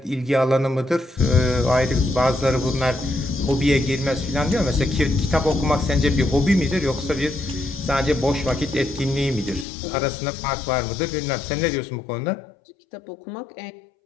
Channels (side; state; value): right; drops out; at 9.7 s